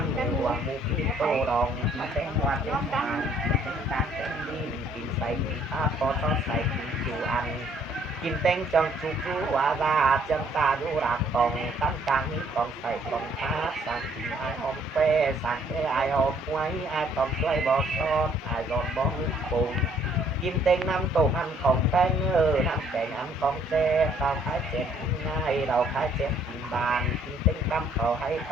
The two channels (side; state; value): both; normal; correlation 0.63